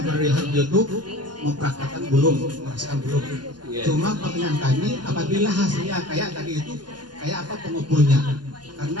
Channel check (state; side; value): late; left; 0.70 ms